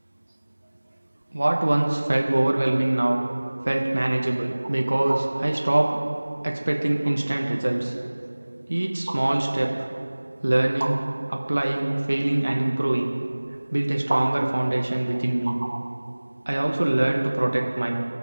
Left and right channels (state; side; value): inverted; both; correlation -1.00